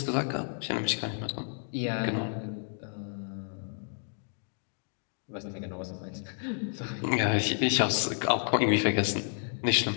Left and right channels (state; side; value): silent; right; 57 dB below the other